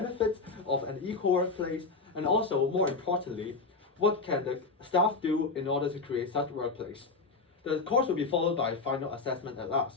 of an equal workplace and also, more importantly, what can the staff do in order to create such workplace. The course will be followed by a final assessment at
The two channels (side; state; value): right; quieter; 4.1 dB